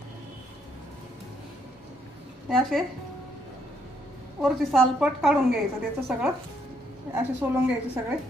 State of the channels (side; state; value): both; normal; correlation 0.72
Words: हे असे वरची सालपट काढून घ्यायचं, त्याचं सगळं असे सोलून घ्यायचे सगळे।